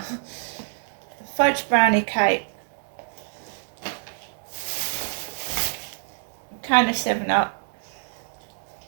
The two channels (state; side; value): silent; left; digital silence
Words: Fudge brownie cake. Can of 7-Up.